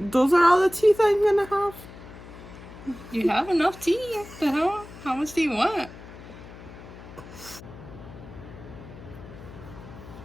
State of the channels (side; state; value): left; noise; hum, 16 dB below the sound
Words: are all the teeth I'm gonna have. You have enough teeth. The hell? How much do you want?